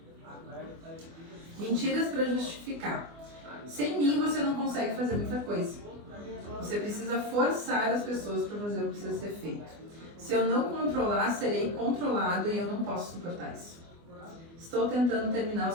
Mentiras para justificar. Sem mim você não consegue fazer muita coisa. Você precisa forçar as pessoas para fazer o que precisa ser feito. Se eu não controlar, serei controlado e eu não posso suportar isso. Estou tentando terminar o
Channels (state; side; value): late; left; 24 ms